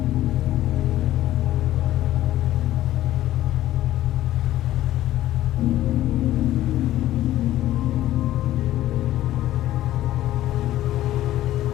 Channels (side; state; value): right; quieter; 14.1 dB